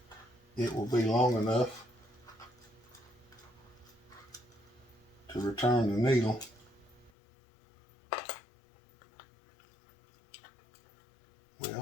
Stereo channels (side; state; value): right; drops out; at 7.1 s